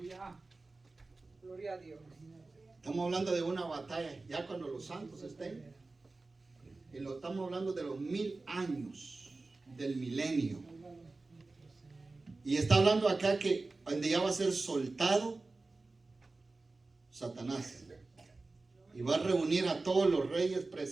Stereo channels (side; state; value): left; quieter; 3.5 dB